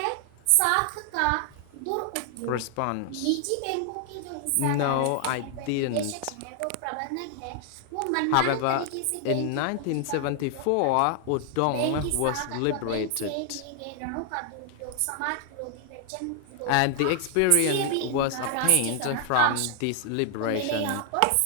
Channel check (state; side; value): different; both; correlation 0.00